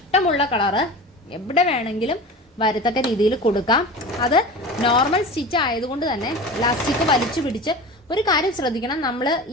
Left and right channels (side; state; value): both; normal; correlation 0.33